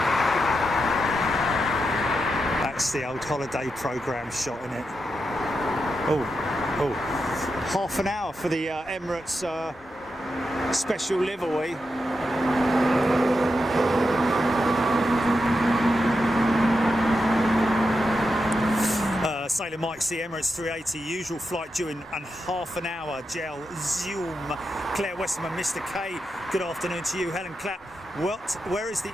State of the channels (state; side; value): normal; both; correlation 0.87